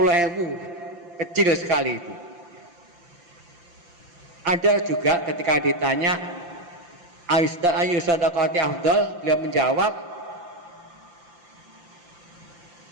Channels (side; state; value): left; late; 5.8 ms